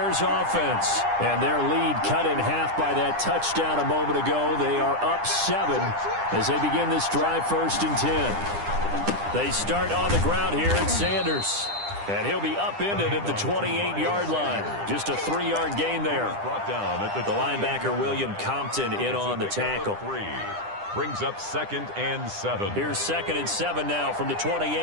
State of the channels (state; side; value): late; left; 10 ms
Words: offense. And their lead cut in half by that touchdown a moment ago. They are up 7 as they begin this drive 1st and 10. They start on the ground here at Sanders. And he'll be upended at the 28-yard line. Just a 3-yard gain there. Brought down at the linebacker, William Compton, in on the tackle. Brings up 2nd and 7. Here's 2nd and 7 now from the